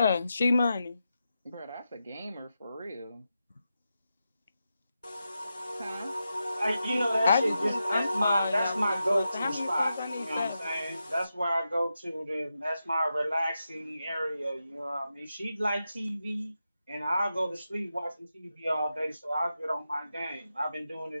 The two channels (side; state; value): both; inverted; correlation -0.89